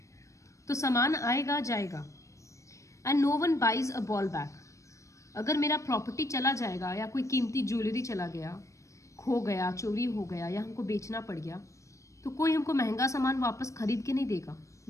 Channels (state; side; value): late; right; 0.15 ms